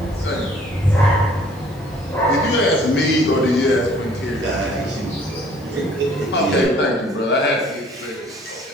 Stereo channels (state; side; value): normal; both; correlation 0.56